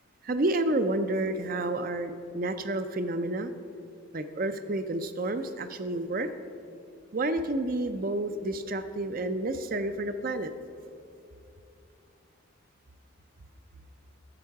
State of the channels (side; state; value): both; normal; correlation 0.31